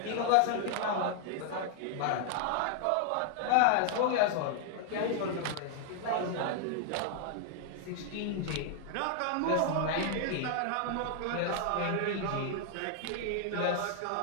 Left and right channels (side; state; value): both; different; correlation 0.00